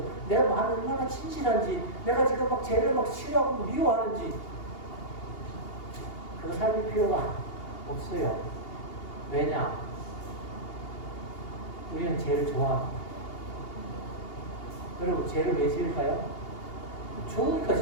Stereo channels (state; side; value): late; right; 2.8 ms